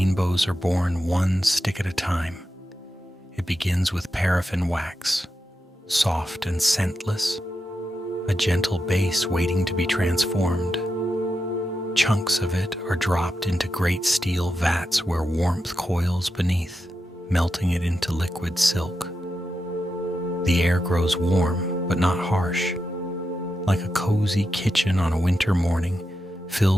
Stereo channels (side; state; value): both; normal; correlation 0.88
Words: are born one stick at a time. It begins with paraffin wax, soft and scentless, a gentle base waiting to be transformed. Chunks of it are dropped into great steel vats where warmth coils beneath, melting it into liquid silk. The air grows warm, but not harsh, like a cozy kitchen on a winter morning,